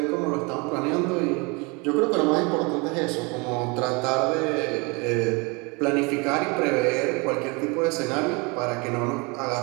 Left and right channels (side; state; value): left; quieter; 29.0 dB